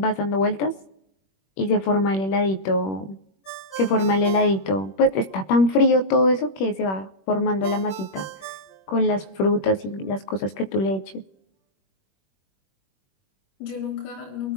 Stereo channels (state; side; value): late; right; 21 ms